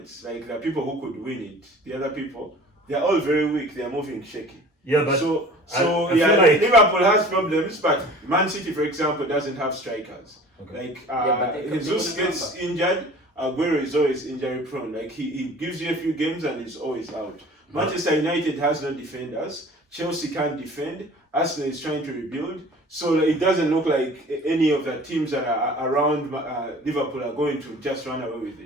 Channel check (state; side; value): normal; both; correlation 0.45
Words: like the people who could win it, the other people, they are all very weak. They are moving shaky. Yeah, but I feel like Liverpool has problems, but Man City, for example, doesn't have strikers. Okay. Like Jesus gets injured, Aguero is always injury prone. Like he gives you a few games and he's always out. Manchester United has no defenders. Chelsea can't defend. Arsenal is trying to rebuild. So it doesn't look like any of the teams that are around Liverpool are going to just run away with